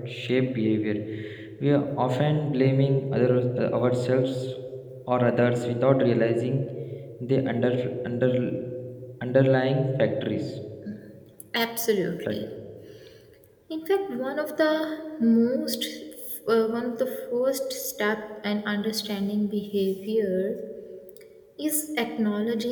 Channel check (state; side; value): identical; both; correlation 1.00